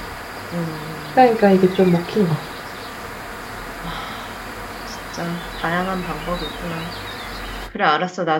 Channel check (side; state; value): both; identical; correlation 1.00